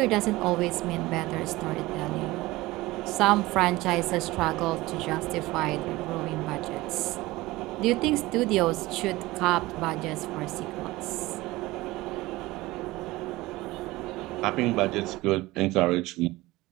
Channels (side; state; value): left; quieter; 19.5 dB